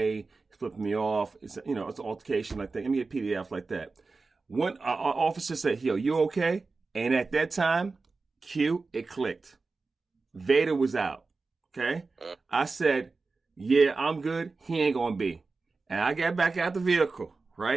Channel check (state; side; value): quieter; left; 4.0 dB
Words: flipping me off. It's an altercation like that. Let me get PDF like that. One officer said, "Yo, you okay?" And at that time, it clicked. Vader was out. Okay, I said, "Yeah, I'm good. He ain't gonna be." And I got back out the vehicle.